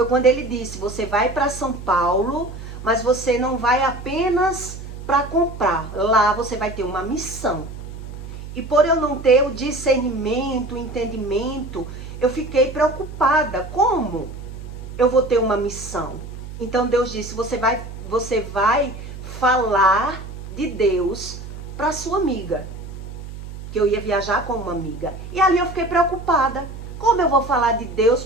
quando ele disse, você vai para São Paulo, mas você não vai apenas para comprar. Lá você vai ter uma missão. E por eu não ter o discernimento, o entendimento, eu fiquei preocupada. Como eu vou ter uma missão? Então Deus disse, você vai falar de Deus para sua amiga. Que eu ia viajar com uma amiga. E ali eu fiquei preocupada. Como eu vou falar de Deus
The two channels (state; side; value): noise; right; hum, 11 dB below the sound